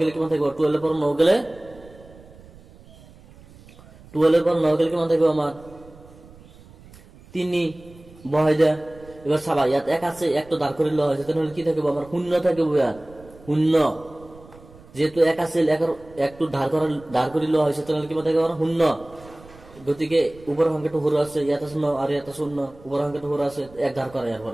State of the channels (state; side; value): noise; right; rumble, 23 dB below the sound